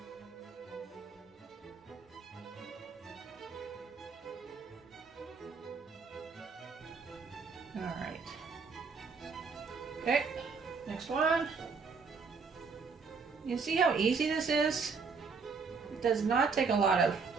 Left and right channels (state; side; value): quieter; left; 5.1 dB